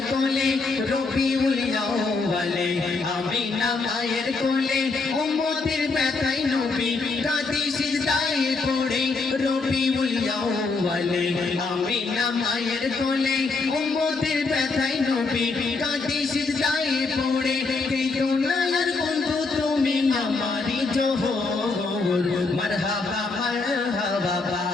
কোলে রবিউল আউয়ালে আমিনা মায়ের কোলে উম্মতের ব্যথায় নবী কাঁদে সিজদায় পড়ে রবিউল আউয়ালে আমিনা মায়ের কোলে উম্মতের ব্যথায় নবী কাঁদে সিজদায় পড়ে কেঁদো না আর বন্ধু তুমি আমারই জোহর মারহাবা মারহাবা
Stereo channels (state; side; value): quieter; right; 4.0 dB